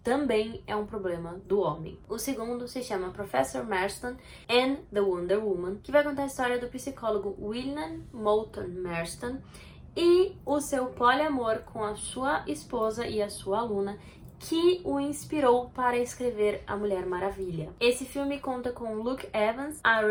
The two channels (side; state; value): both; identical; correlation 1.00